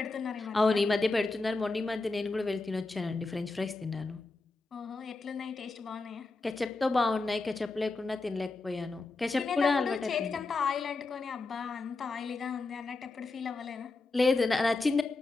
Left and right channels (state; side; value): quieter; right; 3.5 dB